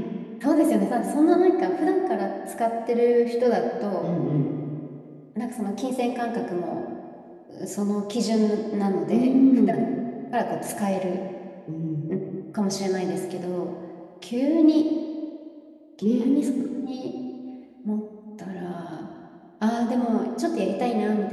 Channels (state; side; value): identical; both; correlation 1.00